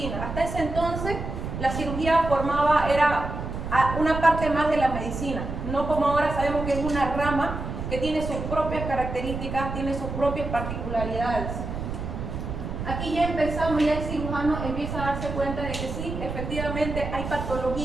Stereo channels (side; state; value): right; noise; rumble, 6 dB below the sound